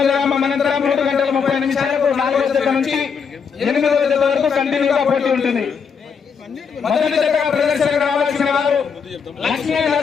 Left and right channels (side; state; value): right; quieter; 6.2 dB